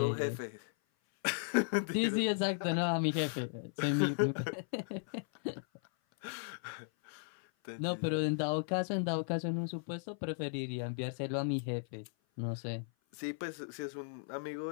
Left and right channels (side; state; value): right; silent; 54 dB below the other